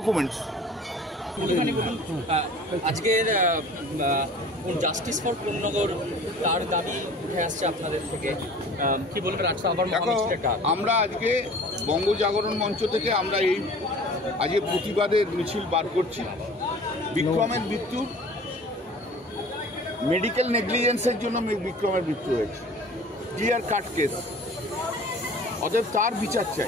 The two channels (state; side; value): normal; both; correlation 0.44